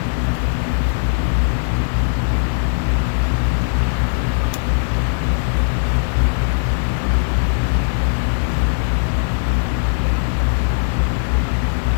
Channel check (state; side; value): silent; right; digital silence